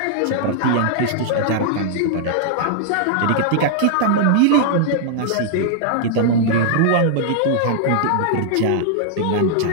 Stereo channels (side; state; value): both; different; correlation -0.01